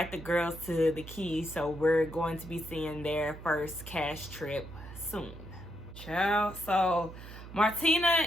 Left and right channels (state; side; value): noise; right; hum, 14 dB below the sound